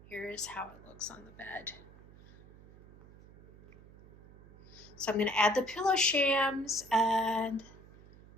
here's how it looks on the bed. So I'm going to add the pillow shams and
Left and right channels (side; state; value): right; noise; hum, 22 dB below the sound